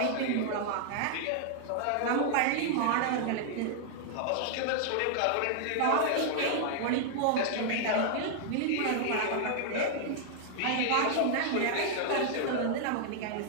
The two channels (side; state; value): both; different; correlation -0.01